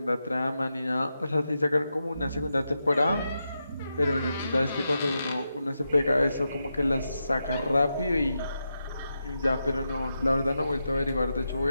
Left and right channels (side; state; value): both; inverted; correlation -0.87